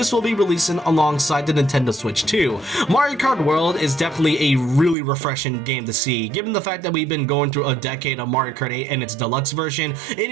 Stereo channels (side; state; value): left; drops out; at 5.0 s